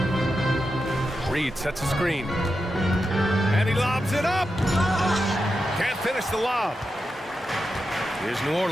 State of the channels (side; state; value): both; normal; correlation 0.89